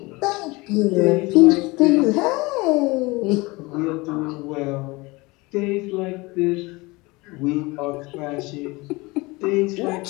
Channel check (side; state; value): right; quieter; 23.7 dB